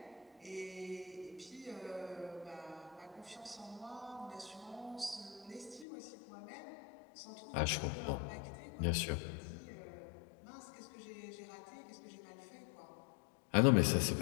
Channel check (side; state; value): right; drops out; at 5.9 s